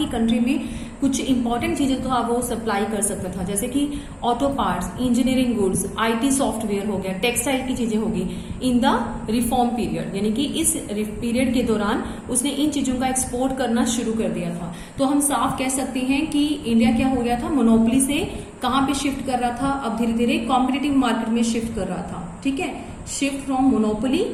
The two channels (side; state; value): both; identical; correlation 1.00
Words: कंट्री में कुछ इंपॉर्टेंट चीजें तो वो सप्लाई कर सकता था, जैसे कि auto parts, engineering goods, IT software हो गया, टेक्सटाइल की चीजें होगी इन द रिफॉर्म पीरियड, यानी कि इस पीरियड के दौरान उसने इन चीजों का एक्सपोर्ट करना शुरू कर दिया था। तो हम साफ कह सकते हैं कि इंडिया क्या हो गया था, मोनोपोली से कहां पे शिफ्ट कर रहा था, अब धीरे धीरे कॉम्पिटिटिव मार्केट में शिफ्ट कर रहा था। ठीक है, shift from monopoly